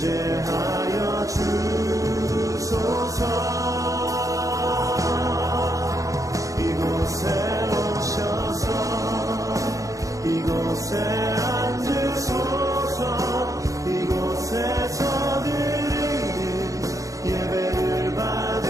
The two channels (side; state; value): left; late; 0.16 ms